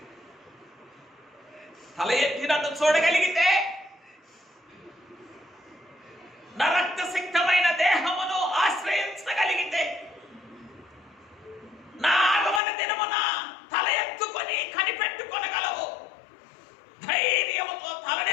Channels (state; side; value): drops out; right; at 12.6 s